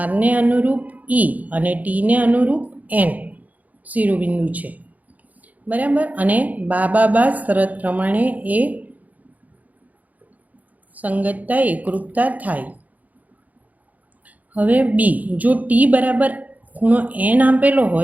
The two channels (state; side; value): late; left; 0.077 ms